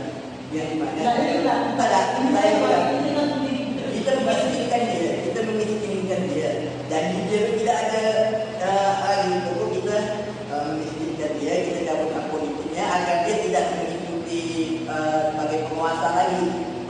yang di mana. Kita memiskinkan dia, dan dia tidak ada hal untuk kita memiskinkan dia, kita cabut hak politiknya agar dia tidak mengikuti sebagai penguasa lagi.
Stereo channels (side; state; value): both; identical; correlation 1.00